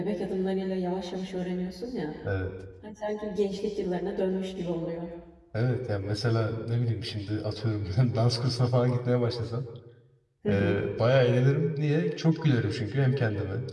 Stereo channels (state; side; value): identical; both; correlation 1.00